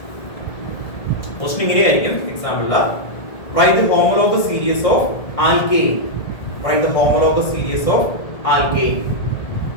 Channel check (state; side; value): late; right; 1.7 ms